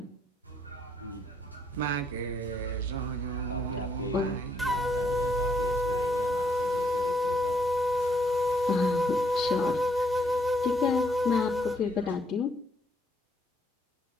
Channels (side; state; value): both; normal; correlation 0.71